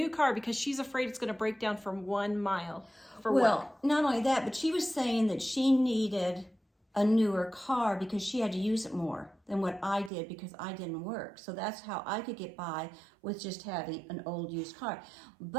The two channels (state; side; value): drops out; left; at 10.1 s